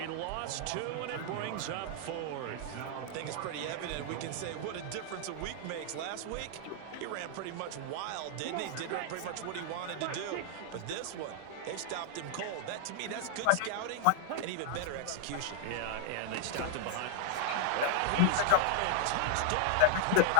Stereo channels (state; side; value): different; both; correlation 0.00